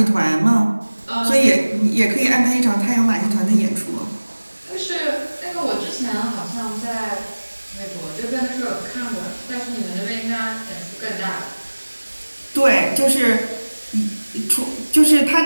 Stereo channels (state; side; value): inverted; both; correlation -1.00